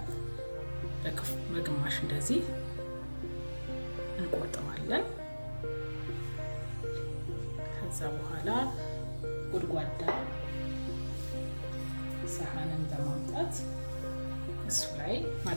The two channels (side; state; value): both; inverted; correlation -1.00